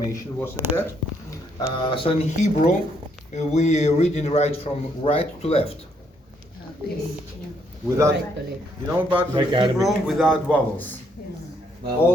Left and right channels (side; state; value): both; normal; correlation 0.72